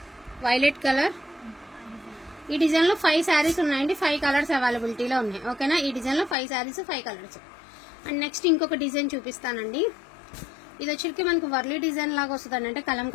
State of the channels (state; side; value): drops out; right; at 6.4 s